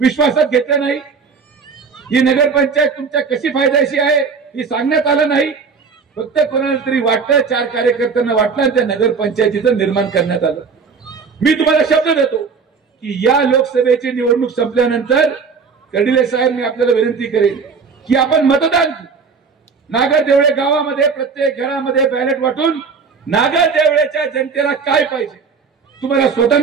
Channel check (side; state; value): left; quieter; 5.3 dB